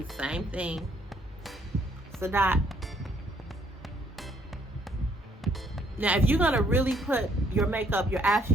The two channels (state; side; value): normal; both; correlation 0.67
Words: same thing. It's a dot. Now, if you're gonna really put your makeup, your